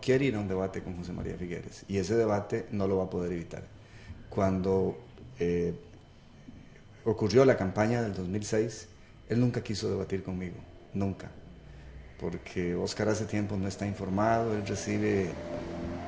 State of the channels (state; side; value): identical; both; correlation 1.00